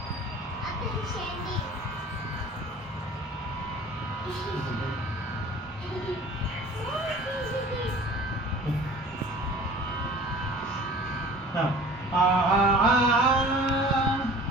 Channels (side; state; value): both; normal; correlation 0.45